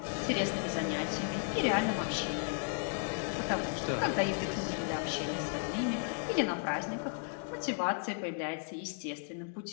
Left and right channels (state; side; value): silent; right; 55 dB below the other